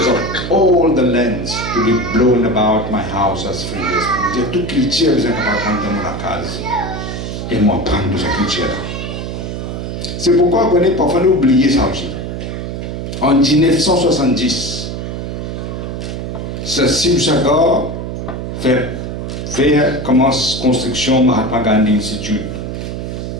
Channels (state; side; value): noise; right; hum, 5 dB below the sound